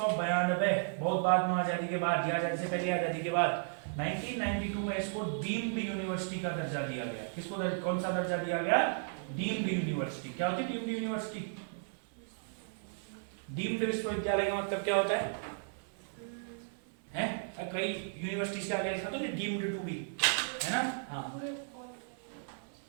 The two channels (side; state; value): left; silent; 55 dB below the other